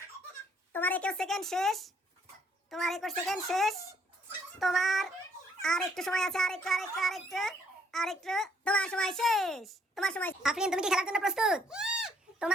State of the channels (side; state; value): both; normal; correlation 0.67